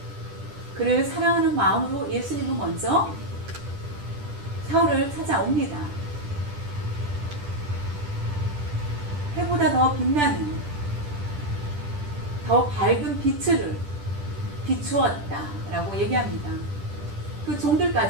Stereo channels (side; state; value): left; late; 10 ms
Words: 그를 사랑하는 마음으로 예수님은 먼저 사울을 찾아옵니다. 해보다 더 빛나는 더 밝은 빛을 비추었다라고 얘기합니다. 그